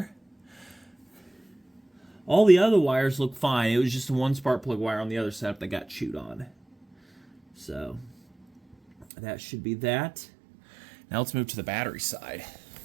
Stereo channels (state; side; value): drops out; left; at 9.1 s